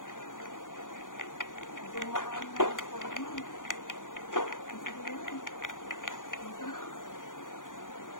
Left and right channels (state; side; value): late; right; 0.88 ms